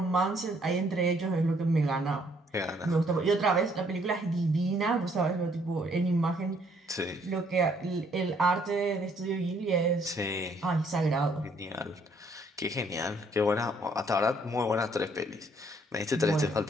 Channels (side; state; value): both; normal; correlation 0.66